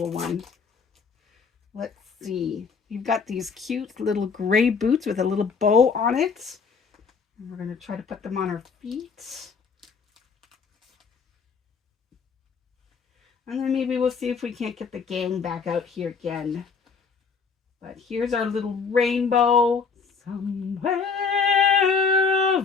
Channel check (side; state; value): right; quieter; 5.4 dB